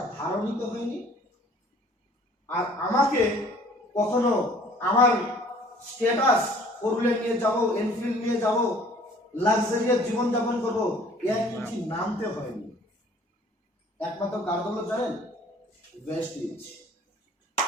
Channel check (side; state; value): both; normal; correlation 0.54